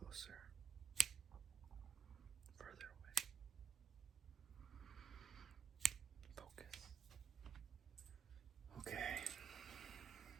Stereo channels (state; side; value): quieter; left; 6.7 dB